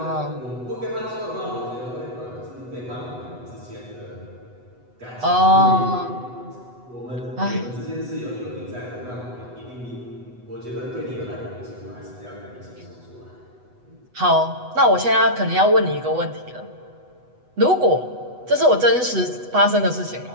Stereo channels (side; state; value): left; late; 8.1 ms